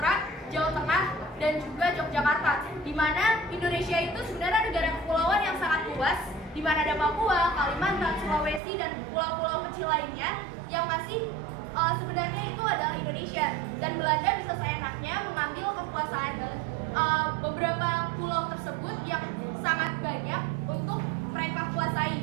Jawa Tengah, dan juga Yogyakarta. Di mana Indonesia itu sebenarnya negara kepulauan yang sangat luas, di mana ada Papua, Kalimantan, Sulawesi, dan pulau-pulau kecil lainnya yang masih sebenarnya itu adalah Indonesia. Dan Belanda bisa seenaknya mengambil kekuasaan beberapa pulau tersebut yang sangat banyak untuk mereka kuasai,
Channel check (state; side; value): drops out; left; at 8.6 s